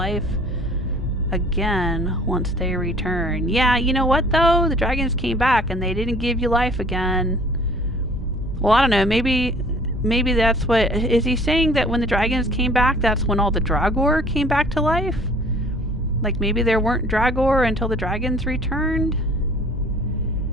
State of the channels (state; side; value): normal; both; correlation 0.52